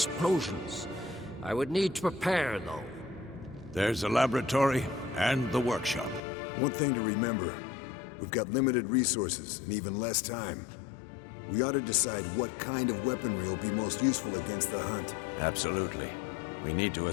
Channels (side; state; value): right; drops out; at 6.2 s